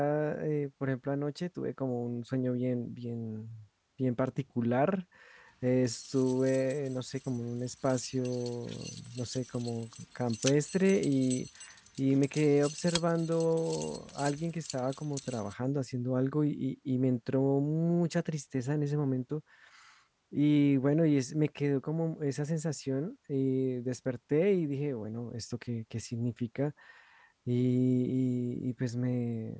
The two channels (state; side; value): identical; both; correlation 1.00